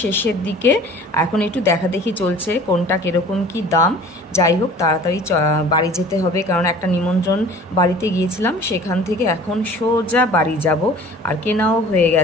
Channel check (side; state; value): both; normal; correlation 0.46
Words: শেষের দিকে। এখন একটু দেখাদেখি চলছে কোনটা কীরকম কি দাম। যাই হোক, তাড়াতাড়ি বাড়ি যেতে হবে, কারণ একটা নিমন্ত্রণ বাড়িতে গিয়েছিলাম, সেখান থেকে এখন সোজা বাড়ি যাব। আর কেনাও হয়ে